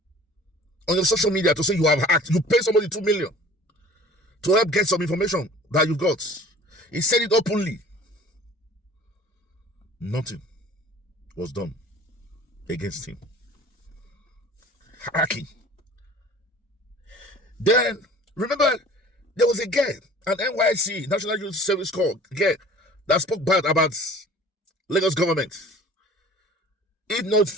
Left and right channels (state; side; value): normal; both; correlation 0.46